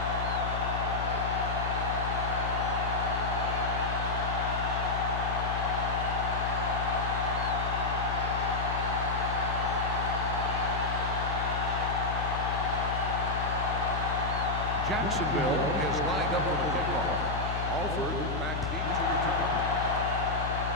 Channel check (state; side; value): noise; left; hum, 3 dB below the sound